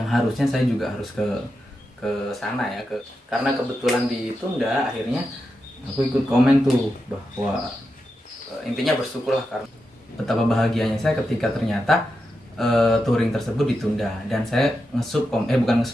harusnya saya juga harus ke sana ya, karena kebetulan ditunda. Akhirnya aku ikut komen tuh bahwa intinya bersyukurlah, karena betapa bahagianya saya ketika ternyata touring tersebut ditunda. Dan saya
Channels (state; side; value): normal; both; correlation 0.88